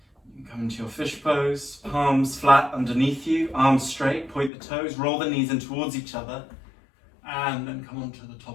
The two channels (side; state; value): right; drops out; at 4.5 s